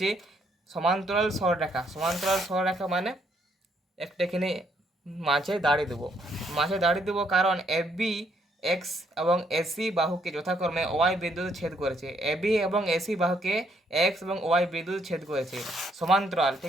সমান্তরাল সরলরেখা। সমান্তরাল সরলরেখা মানে একটা এখানে মাঝে দাঁড়িয়ে দেবো কারণ এবি এক্স এবং এসি বাহুকে যথাক্রমে ওয়াই বিন্দুতে ছেদ করেছে। এবি এবং এসি বাহুকে এক্স এবং ওয়াই বিন্দুতে ছেদ করেছে। সমান্তরাল,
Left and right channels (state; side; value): normal; both; correlation 0.71